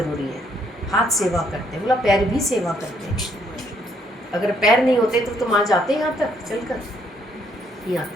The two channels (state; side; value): normal; both; correlation 0.70